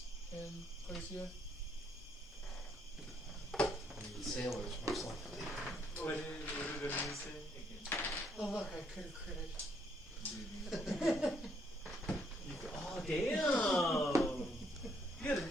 in Glacia? Sailors, most likely. What did he say? Oh look, I could have critted. Oh, damn! You got an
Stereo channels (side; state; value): both; normal; correlation 0.71